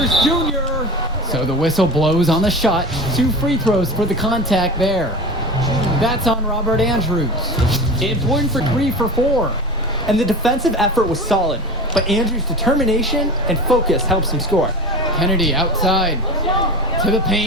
Junior. So the whistle blows on the shot. 2 free throws for the contact there. That's on Robert Andrews. Important for 3 for 4. And the defensive effort was solid, but Andrews' determination and focus helps him score. Kennedy outside. To the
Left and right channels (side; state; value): both; normal; correlation 0.31